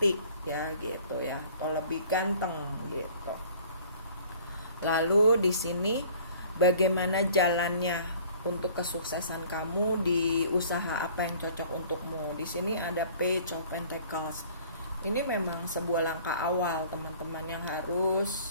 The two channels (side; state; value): both; inverted; correlation -0.51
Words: ya gitu ya, atau lebih ganteng gitu. Lalu di sini bagaimana jalannya untuk kesuksesan kamu di usaha apa yang cocok untukmu. Di sini ada Page of Pentacles. Ini memang sebuah langkah awal teman-teman yang